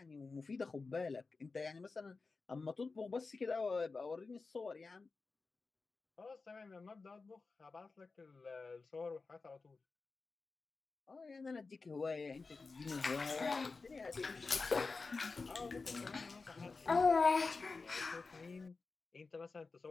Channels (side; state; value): right; quieter; 4.1 dB